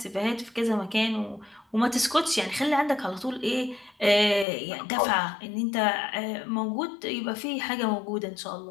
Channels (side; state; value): right; drops out; at 4.5 s